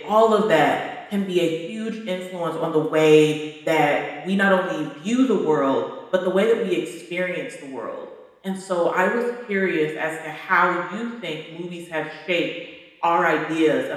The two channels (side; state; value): both; identical; correlation 1.00